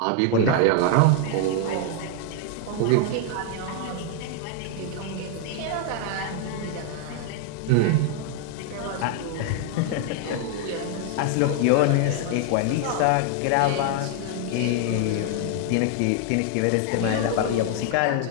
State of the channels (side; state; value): both; different; correlation 0.00